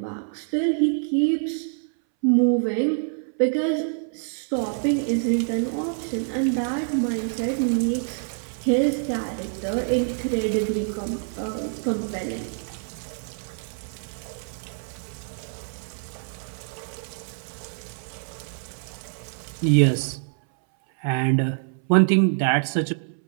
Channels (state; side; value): silent; left; 60 dB below the other